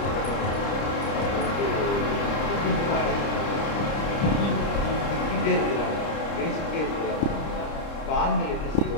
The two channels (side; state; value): right; late; 30 ms